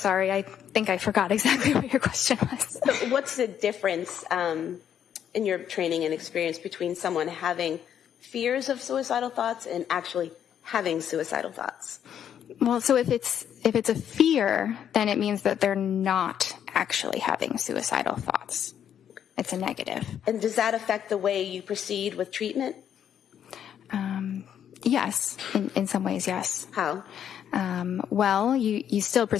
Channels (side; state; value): right; quieter; 9.3 dB